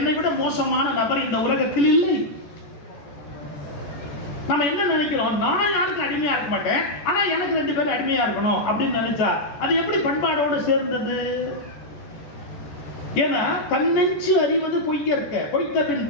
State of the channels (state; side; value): late; right; 14 ms